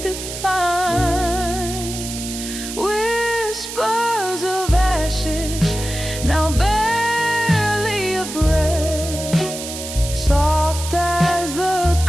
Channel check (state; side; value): noise; right; hiss, 8 dB below the sound